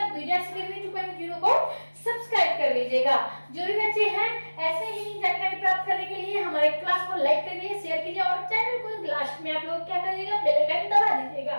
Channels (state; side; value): inverted; both; correlation -1.00